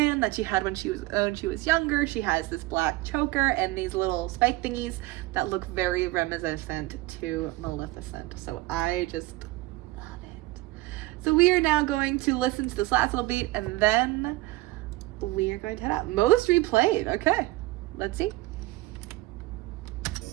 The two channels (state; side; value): quieter; left; 19.6 dB